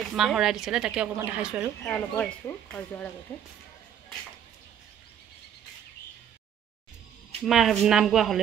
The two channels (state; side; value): quieter; left; 9.3 dB